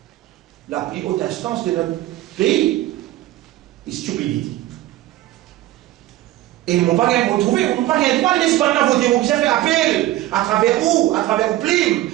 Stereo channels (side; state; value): left; quieter; 15.5 dB